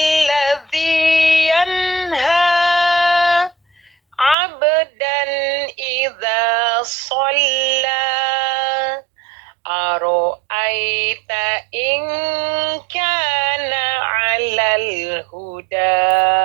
yanha abdan idza shalla. Aro aita in kana 'alal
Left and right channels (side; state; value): left; drops out; at 4.4 s